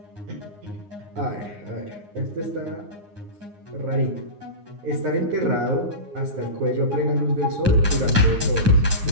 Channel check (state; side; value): late; left; 9.7 ms